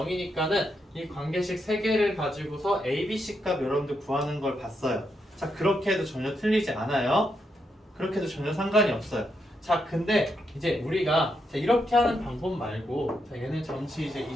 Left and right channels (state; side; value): normal; both; correlation 0.81